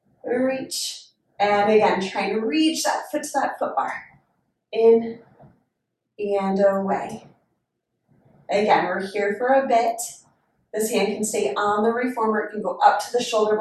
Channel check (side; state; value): both; identical; correlation 1.00